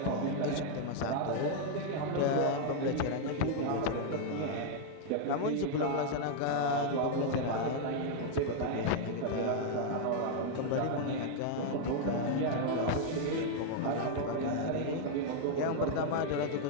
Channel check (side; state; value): both; different; correlation 0.00